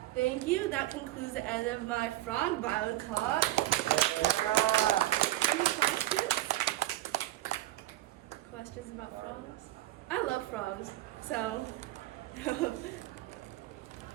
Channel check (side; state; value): left; quieter; 15.9 dB